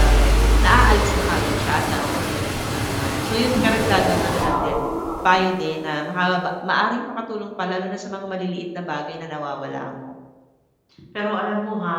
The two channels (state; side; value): identical; both; correlation 1.00